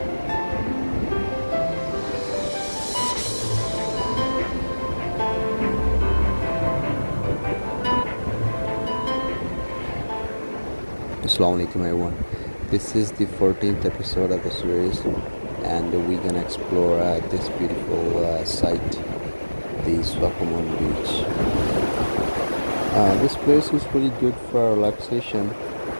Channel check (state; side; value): inverted; both; correlation -1.00